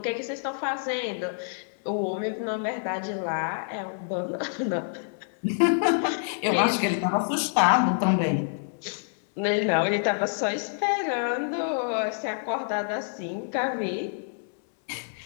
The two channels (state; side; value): silent; right; 60 dB below the other